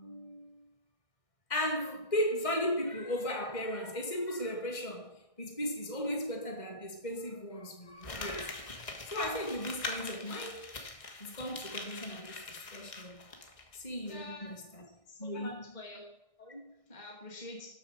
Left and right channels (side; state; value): right; late; 1.6 ms